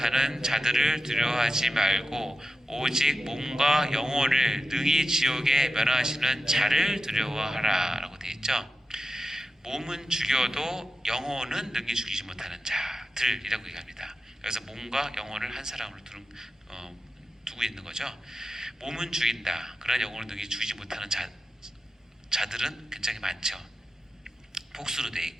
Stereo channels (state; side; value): normal; both; correlation 0.91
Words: 자들을 두려워하지 말고 오직 몸과 영혼을 능히 지옥에 멸하시는 자를 두려워하라 라고 되어 있죠. 몸은 죽여도 영혼은 능히 죽이지 못하는 자들이라고 얘기합니다. 그래서 몸과 영혼을 한 사람으로 두고 있는 거죠. 몸은 죽인다. 그러나 영혼을 능히 죽이지 못하는 자들은 굉장히 많죠. 복수로 되어